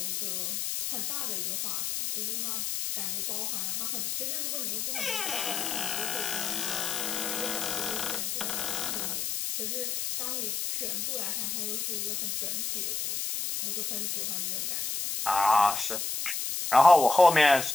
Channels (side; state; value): left; noise; hiss, 2 dB below the sound